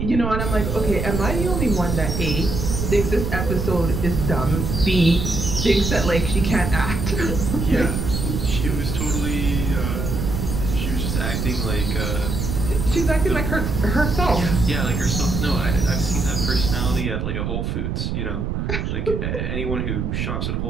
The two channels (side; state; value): right; noise; rumble, 2 dB below the sound